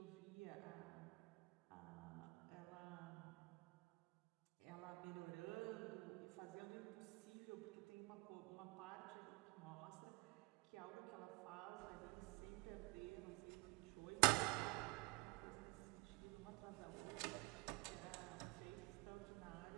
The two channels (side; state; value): left; quieter; 25.8 dB